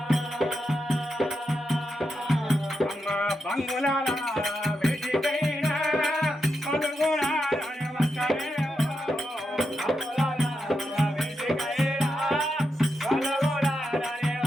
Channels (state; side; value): normal; both; correlation 0.85